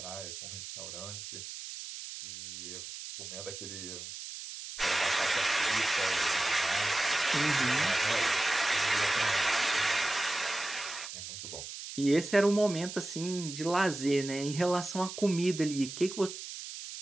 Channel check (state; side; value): noise; right; hiss, 10 dB below the sound